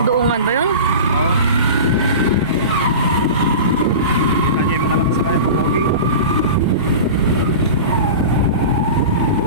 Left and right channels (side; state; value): both; inverted; correlation -0.31